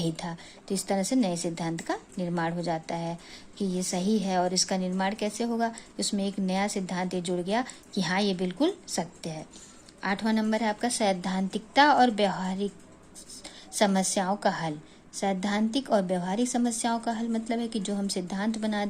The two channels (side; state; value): both; identical; correlation 1.00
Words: था। तो इस तरह से नए सिद्धांत का निर्माण हो जाता है कि ये सही है। और इसका निर्माण कैसे होगा? उसमें एक नया सिद्धांत ये जुड़ गया कि हाँ ये बिल्कुल सत्य है। 8वां नंबर है आपका सैद्धांतिकता और व्यवहारिक समस्याओं का हल। सैद्धांतिक और व्यवहारिक समस्याओं का हल मतलब है कि जो हम सिद्धांत बना